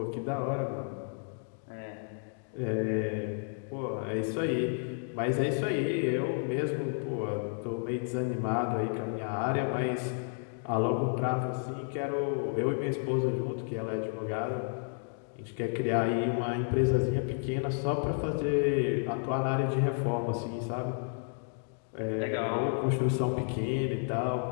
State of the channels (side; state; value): right; silent; 57 dB below the other